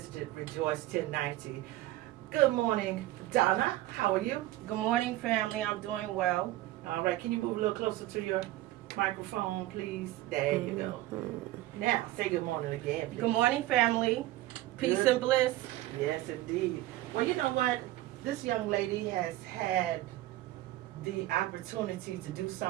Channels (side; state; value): left; quieter; 16.2 dB